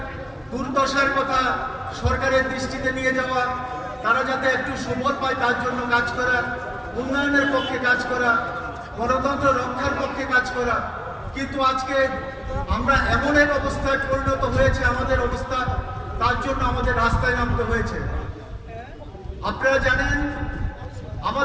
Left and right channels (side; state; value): both; identical; correlation 1.00